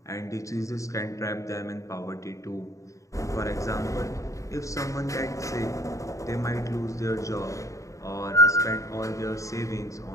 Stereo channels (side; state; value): right; late; 0.15 ms